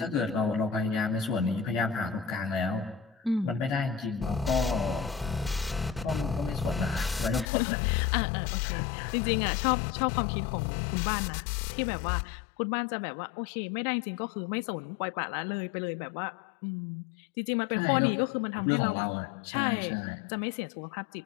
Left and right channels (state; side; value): drops out; right; at 7.5 s